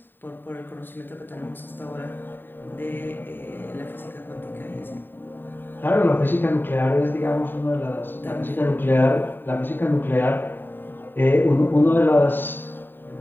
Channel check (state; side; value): late; right; 0.094 ms